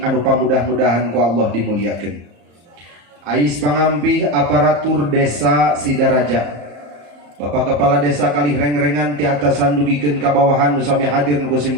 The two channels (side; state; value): left; late; 34 ms